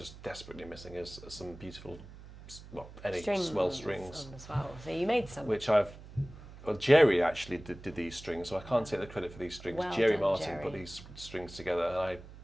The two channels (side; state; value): right; noise; hum, 17 dB below the sound